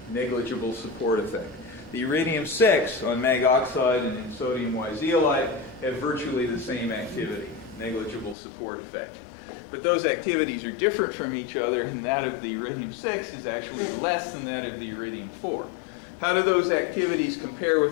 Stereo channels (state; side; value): drops out; right; at 8.3 s